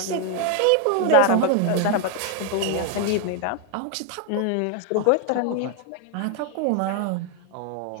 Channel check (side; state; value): both; different; correlation 0.00